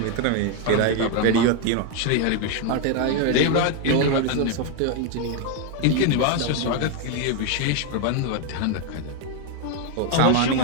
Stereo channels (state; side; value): different; both; correlation 0.01